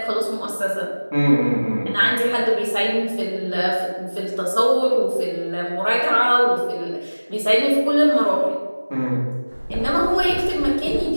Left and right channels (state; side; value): inverted; both; correlation -1.00